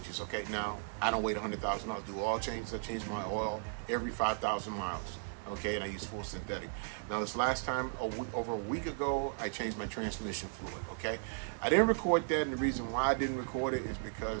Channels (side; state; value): left; silent; digital silence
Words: Okay, now I don't wait 100,000 miles to do all changes. I change my oil every 5,000 miles. Okay, and I use full synthetic. Now this last time, over a week ago, I changed my transmission fluid. Okay, I didn't record that, and the reason why I didn't record it is